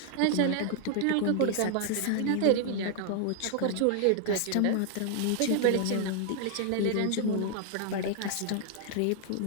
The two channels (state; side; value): different; both; correlation 0.00